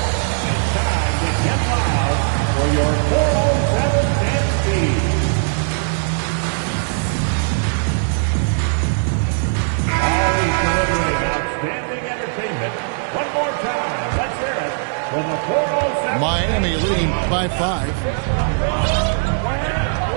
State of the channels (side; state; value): left; silent; 58 dB below the other